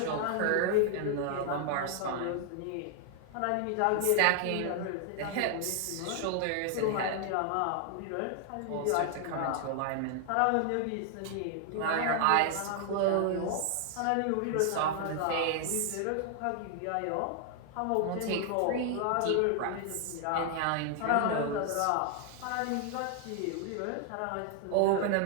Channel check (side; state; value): both; different; correlation 0.00